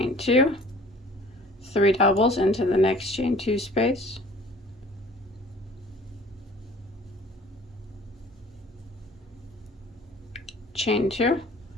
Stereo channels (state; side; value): normal; both; correlation 0.50